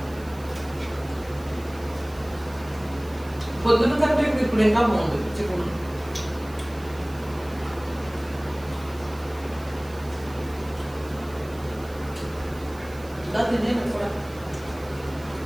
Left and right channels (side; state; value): right; noise; hiss, 22 dB below the sound